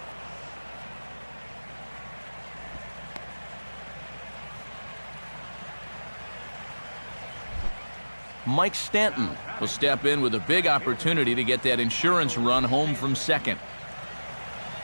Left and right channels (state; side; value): inverted; both; correlation -1.00